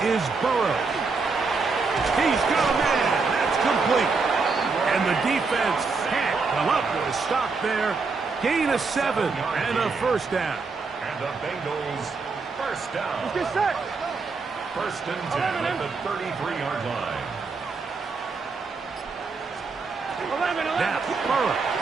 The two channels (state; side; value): quieter; left; 4.4 dB